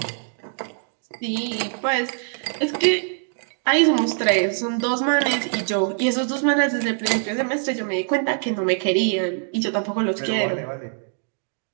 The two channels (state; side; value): silent; left; digital silence